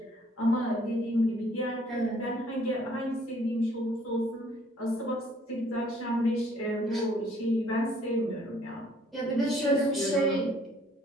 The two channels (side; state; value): both; normal; correlation 0.61